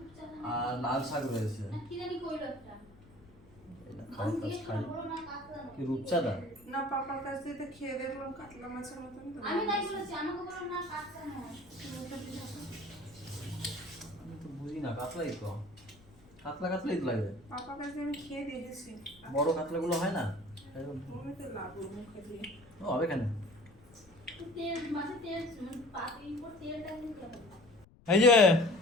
আর লাল শাক রয়েছে। কি জানি কইলো একটা। এটা খাই খাই। কি রূপচাঁদা? না, পাপার কাছ থেকে খেয়ে দেখলাম কাতলা মাছের মতন তো। আমি তাই বলেছি, আমাকে বলো না কাটটা নয়। আমি তো বুঝি না, কাতলাই তো, কাতলা কাতলাই তো লাগে। পাপার কাছে আমি খেয়ে দেখেছি। বড় কাতলাগুলো হয় না? আমি তো লাগবো মুখে দিয়ে। ও হবে কেন? তেল মাছে তেল মানে পাতির উপর তেলটা দিতে হবে। এই যে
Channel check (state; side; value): noise; left; rumble, 25 dB below the sound